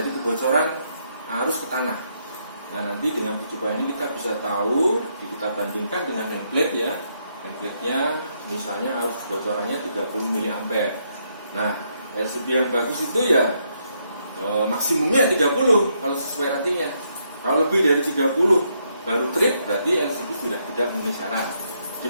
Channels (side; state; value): both; inverted; correlation -0.76